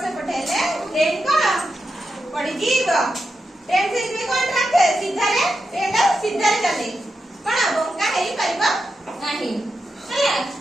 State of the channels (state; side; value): normal; both; correlation 0.88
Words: से पठेले ट्रेन कोन पड़ी जीव ट्रेन से इतने कोन ट्रैक सीधा रे ट्रेन सीधा रे चले कोन बंका हेई परिबा नाही हैला